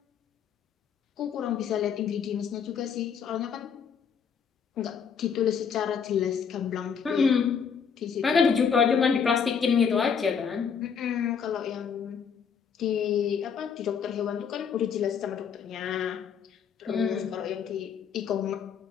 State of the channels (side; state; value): right; quieter; 6.9 dB